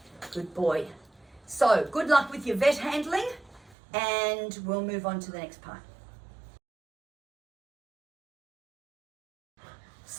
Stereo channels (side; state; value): left; drops out; at 3.8 s